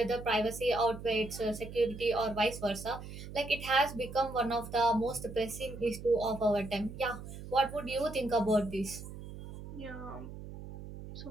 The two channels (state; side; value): noise; right; hum, 11 dB below the sound